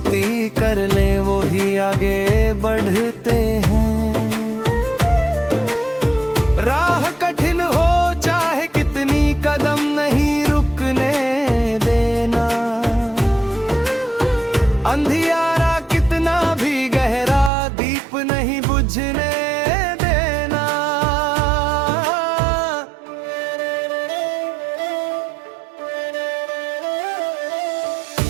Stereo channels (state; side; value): drops out; left; at 17.5 s